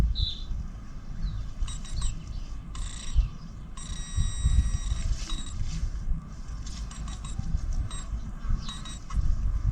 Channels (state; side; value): identical; both; correlation 1.00